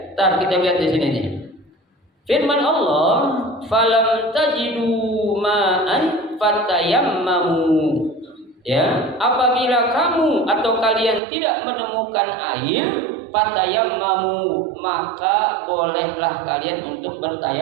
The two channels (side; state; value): left; drops out; at 11.2 s